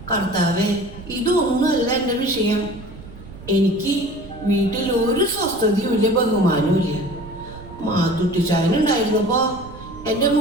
കർത്താവേ, ഇതൊന്നുമല്ല എൻ്റെ വിഷയം. എനിക്ക് വീട്ടിൽ ഒരു സ്വസ്ഥതയും ഇല്ല, ബഹുമാനവും ഇല്ല. മാത്തുട്ടിച്ചായനുണ്ടായിരുന്നപ്പോ എൻ്റെ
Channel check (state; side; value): noise; right; rumble, 16 dB below the sound